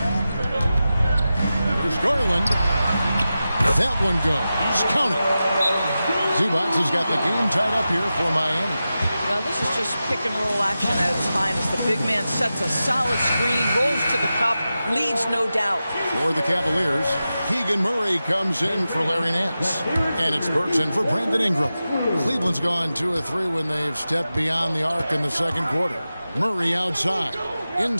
Here's Garland. That one goes. Count it. Zubac has got the game tied up here for Miami. Now this is just pick and roll action at its finest. The big man sets a solid screen, rolls to the cup, leads no doubt. For the Cavaliers, Keegan Murray comes in for Larry Nance. And it's Burks in for Brandon Ingram. Cleveland's gone 2 of 3 when they've stepped beyond the arc in the second quarter. Murray outside.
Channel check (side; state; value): both; inverted; correlation -0.93